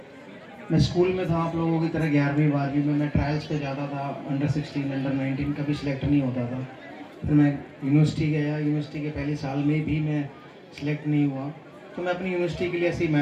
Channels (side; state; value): both; identical; correlation 1.00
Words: मैं स्कूल में था आप लोगों की तरह, 11वीं 12वीं में मैं ट्रायल्स पे जाता था, अंडर 16 अंडर 19 कभी सिलेक्ट नहीं होता था। फिर मैं यूनिवर्सिटी गया, यूनिवर्सिटी के पहले साल में भी मैं सिलेक्ट नहीं हुआ, तो मैं अपनी यूनिवर्सिटी के लिए ऐसे ही